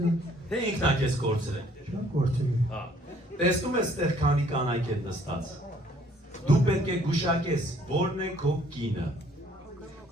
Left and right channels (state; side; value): normal; both; correlation 0.61